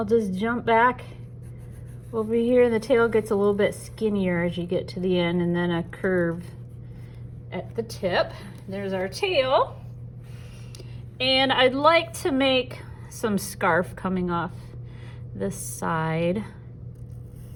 just jump back over here. The tail gets a little bit skinnier as you get to the end, and then a curve at the tip. There's our tail. And I'd like to make some scarf coming off this side.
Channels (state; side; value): identical; both; correlation 1.00